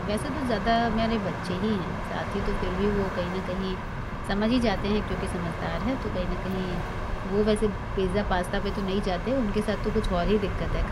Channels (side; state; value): both; identical; correlation 1.00